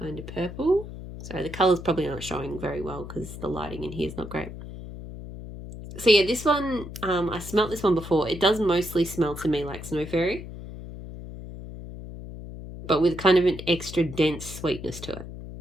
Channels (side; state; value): left; noise; hum, 11 dB below the sound